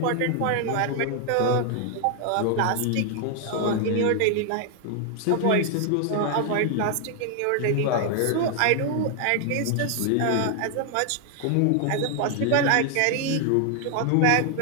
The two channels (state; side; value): different; both; correlation 0.00